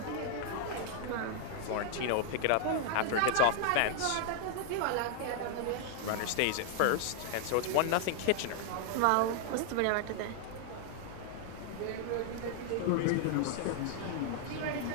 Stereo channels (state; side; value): different; both; correlation 0.00